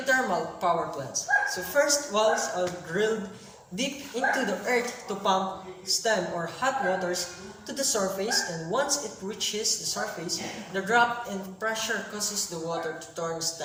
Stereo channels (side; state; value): both; identical; correlation 1.00